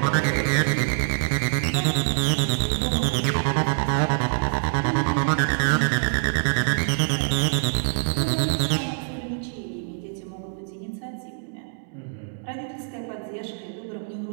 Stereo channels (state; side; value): silent; left; digital silence